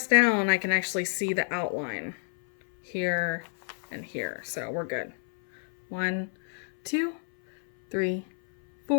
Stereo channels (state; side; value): silent; right; 59 dB below the other